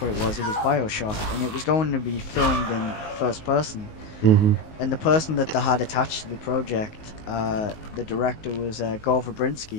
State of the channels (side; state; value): right; late; 19 ms